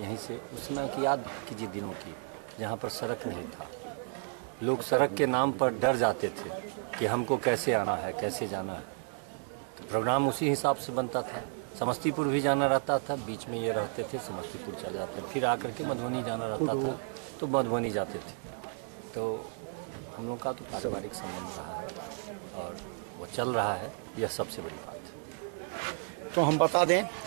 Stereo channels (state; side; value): silent; left; 56 dB below the other